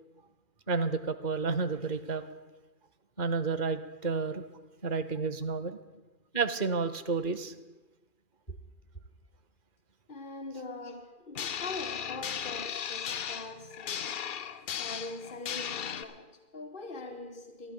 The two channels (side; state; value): right; late; 2.4 ms